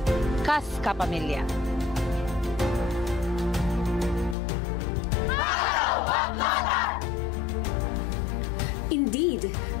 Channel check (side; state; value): right; drops out; at 4.4 s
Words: kas kapamilya. Indeed,